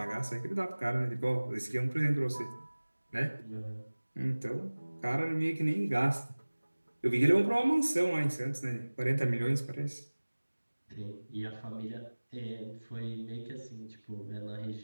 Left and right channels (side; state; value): both; inverted; correlation -1.00